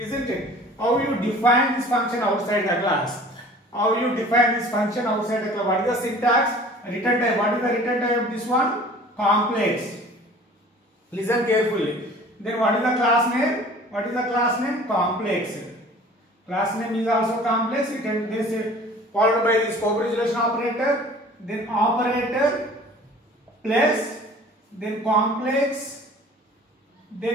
it? How you define this function outside the class? How you define this function outside the class? What is the syntax? Return type. What is the return type of this one? Complex. Listen carefully. Then what is the class name? What is the class name? Complex. Class name is also complex. It can be followed by the scope resolution operator. Then operator plus, then complex,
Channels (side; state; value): both; normal; correlation 0.47